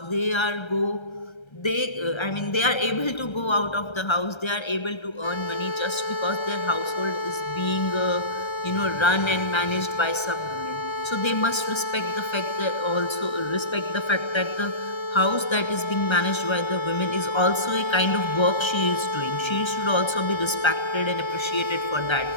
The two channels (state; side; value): late; right; 1.3 ms